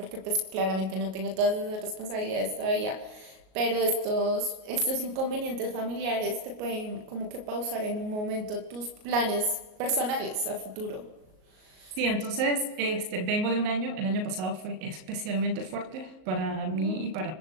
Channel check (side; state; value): left; late; 38 ms